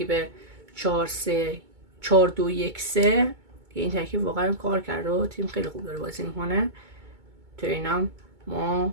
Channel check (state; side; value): late; left; 2.2 ms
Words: 4-2-1-3 که این ترکیب واقعا کار کرده و تیم خیلی خوب داره بازی میکنه. تو اینام ما